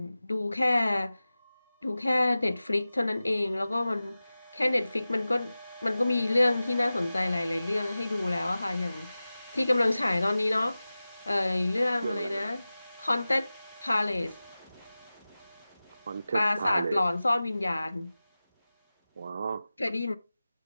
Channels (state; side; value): inverted; both; correlation -0.96